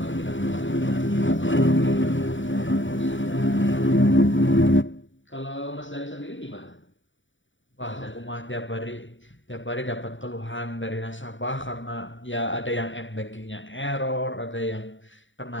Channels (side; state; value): right; late; 0.55 ms